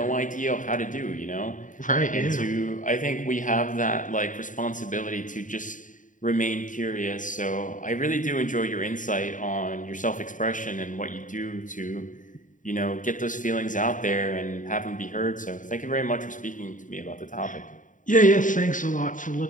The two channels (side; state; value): right; late; 0.38 ms